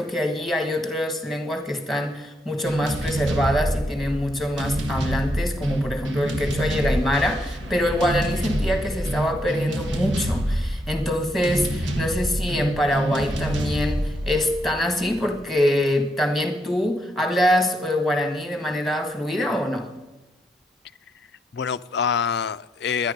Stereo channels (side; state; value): both; normal; correlation 0.78